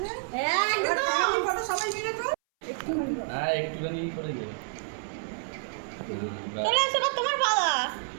একদম ফটো সবাই মিলে তো। হ্যাঁ একটুখানি করে দে। চলে এসো তোমার পালা।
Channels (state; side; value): silent; left; 59 dB below the other